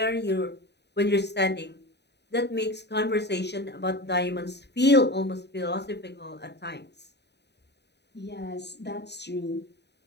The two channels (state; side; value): late; right; 0.49 ms